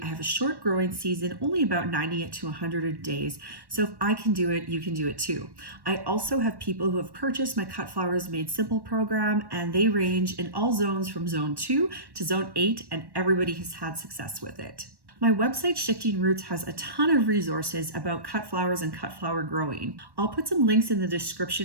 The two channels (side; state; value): left; late; 1.1 ms